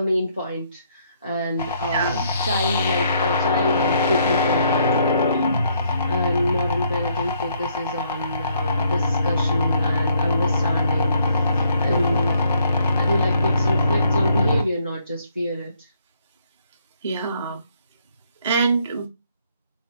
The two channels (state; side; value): inverted; both; correlation -0.70